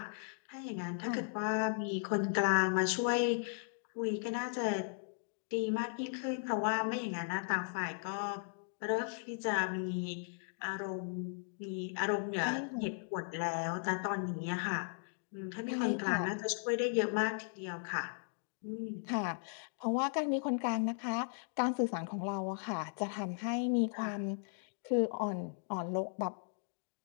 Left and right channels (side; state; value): right; silent; digital silence